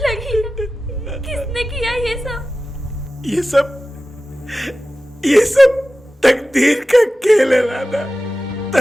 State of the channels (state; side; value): normal; both; correlation 0.95